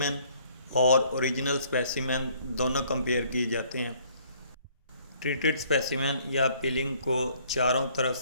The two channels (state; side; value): inverted; both; correlation -0.62